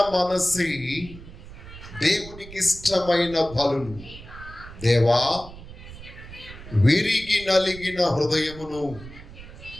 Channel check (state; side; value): noise; right; rumble, 15 dB below the sound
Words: మనసి దేవునికి ఇష్టమైన బలులు. దేవా, విరిగి నలిగిన హృదయమును